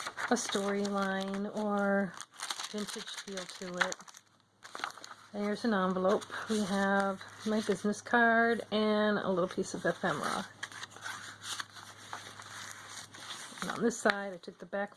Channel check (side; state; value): both; identical; correlation 1.00